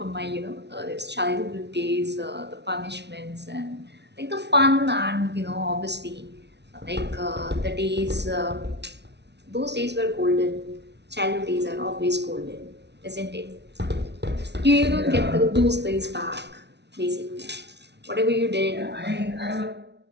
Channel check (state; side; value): late; left; 0.50 ms